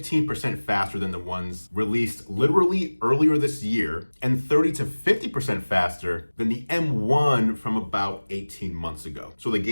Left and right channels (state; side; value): inverted; both; correlation -1.00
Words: faster than the ones released literally earlier this year, and 30 to 50% faster than the M1 from about 18 months ago. So the